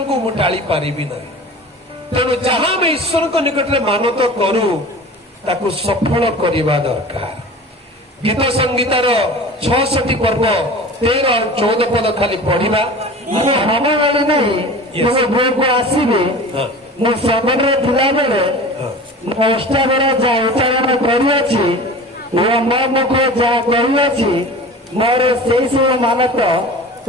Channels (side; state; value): both; normal; correlation 0.37